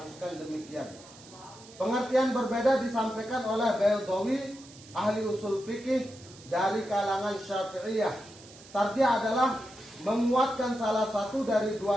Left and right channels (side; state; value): right; noise; hiss, 21 dB below the sound